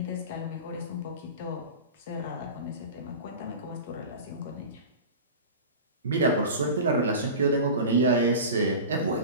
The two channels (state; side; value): inverted; both; correlation -0.32